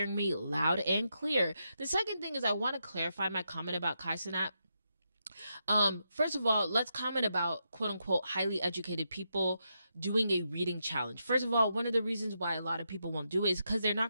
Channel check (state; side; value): inverted; both; correlation -0.83